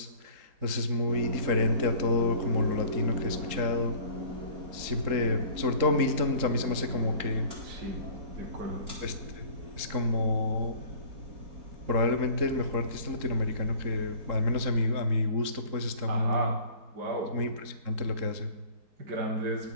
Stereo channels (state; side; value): late; left; 3.8 ms